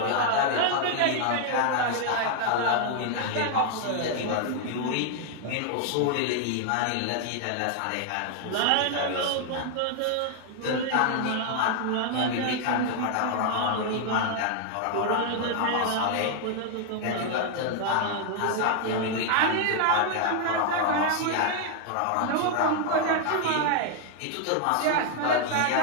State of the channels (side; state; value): both; different; correlation 0.00